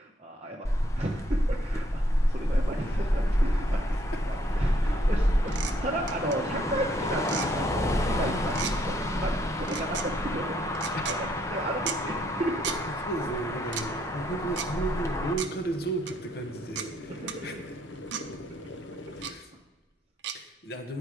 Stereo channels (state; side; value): normal; both; correlation 0.68